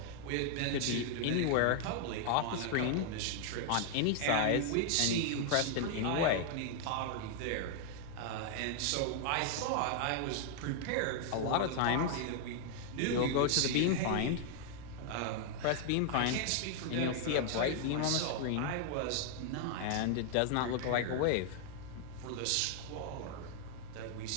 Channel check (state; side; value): different; both; correlation 0.00